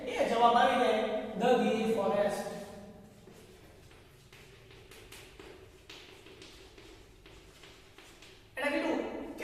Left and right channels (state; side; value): identical; both; correlation 1.00